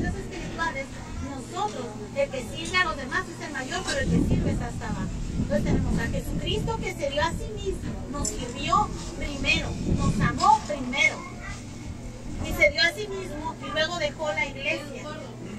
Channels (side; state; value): both; identical; correlation 1.00